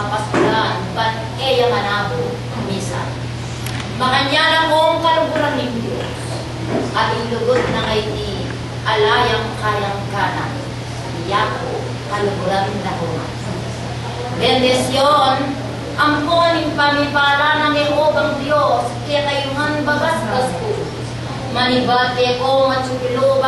ba't eya manabo misa makanyala kong kaluburan ng Diyos at ilugod na kay di alayang kayang kanan yako kaluburan na human. Bendesyon ang kuning pamipala ng Jehovang Diyos kaya kayuhan bagas-gas ko manibate ko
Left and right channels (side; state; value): both; identical; correlation 1.00